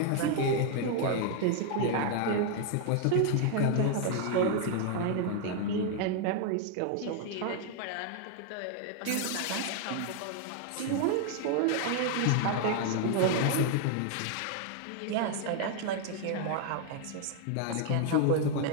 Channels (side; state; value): both; different; correlation 0.00